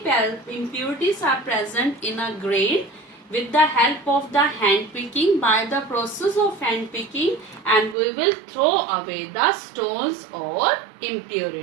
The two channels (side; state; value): left; drops out; at 8.0 s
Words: are present in a grain with the help of the hand picking, by the process of hand picking, and we will throw away the stones or